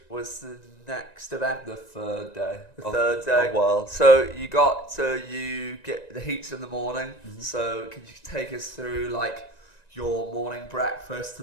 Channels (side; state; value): right; late; 1.9 ms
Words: was the next event. The third day. The third day. Of World. So you get the heats in the morning. So can you take us through like your morning breakfast to